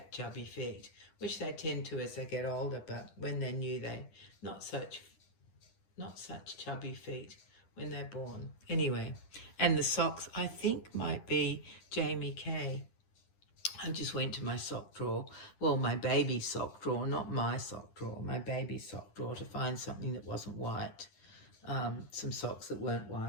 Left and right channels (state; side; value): late; right; 10 ms